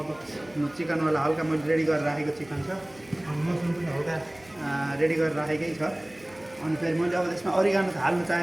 चिकनवाला हल्का मैले रेडी गरेर राखेको चिकन छ, अनि मसरुम पनि हल्का रेडी गरेर राखेकै छ। अनि फेरि मैले अब त्यसमा अरिगानो हाल्नु चाहे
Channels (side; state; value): right; noise; hum, 26 dB below the sound